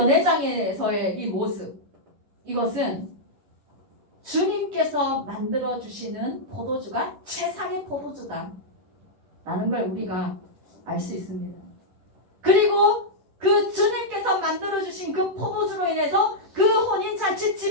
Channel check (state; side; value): late; left; 10 ms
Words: 이 모습, 이것은 주님께서 만들어주시는 포도주가 최상의 포도주다 라는 걸 우리가 알 수 있습니다. 그리고 그 주님께서 만들어주신 그 포도주로 인해서 그